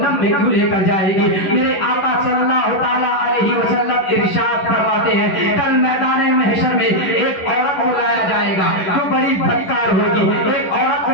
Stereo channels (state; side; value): late; right; 11 ms